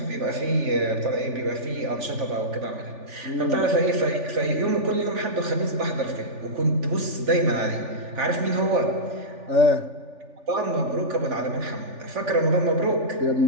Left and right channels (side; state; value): left; late; 3.4 ms